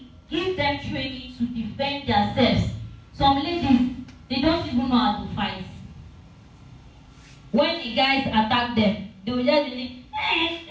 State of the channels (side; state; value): both; identical; correlation 1.00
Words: give them training to defend themselves. Some ladies, they don't even know how to fight. When the guys attack them, they will just be like, hey,